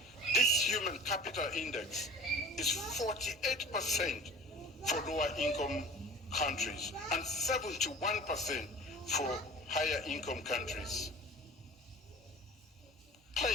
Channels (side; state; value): both; normal; correlation 0.41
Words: this Human Capital Index is 48% for lower income countries and 71% for higher income countries.